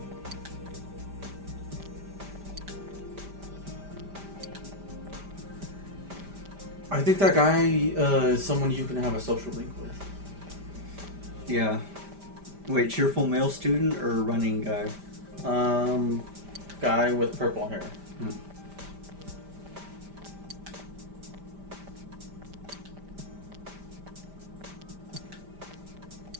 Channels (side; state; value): left; late; 5.1 ms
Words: I think that guy is someone you can have a social link with. Yeah. Wait, cheerful male student or running guy? Guy with purple hair.